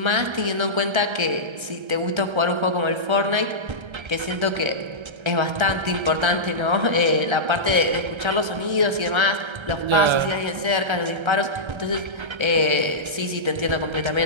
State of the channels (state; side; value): late; left; 1.3 ms